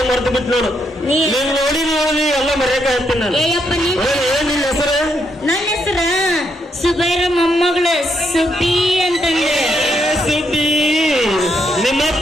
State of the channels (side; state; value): both; normal; correlation 0.78